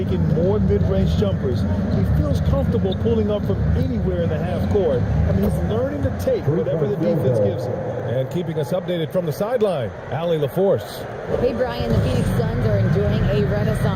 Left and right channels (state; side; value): identical; both; correlation 1.00